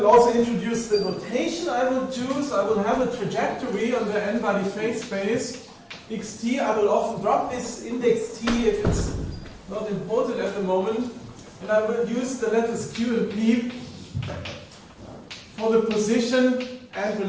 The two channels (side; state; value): both; identical; correlation 1.00